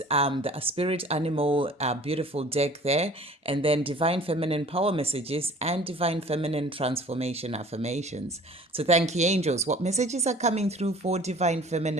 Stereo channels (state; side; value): normal; both; correlation 0.47